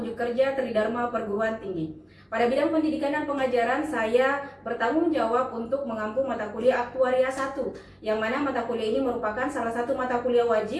kerja Tridharma Perguruan Tinggi. Pada bidang pendidikan dan pengajaran, saya bertanggung jawab untuk mengampu mata kuliah Aktuaria 1, yang mana mata kuliah ini merupakan salah satu mata kuliah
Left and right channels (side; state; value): both; identical; correlation 1.00